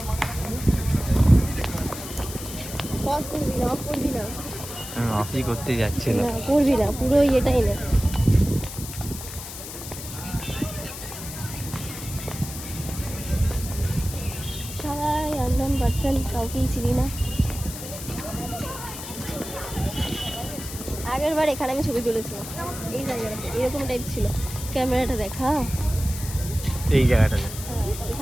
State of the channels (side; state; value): left; noise; hiss, 10 dB below the sound